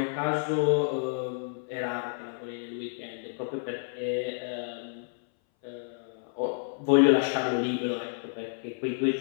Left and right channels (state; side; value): silent; right; 58 dB below the other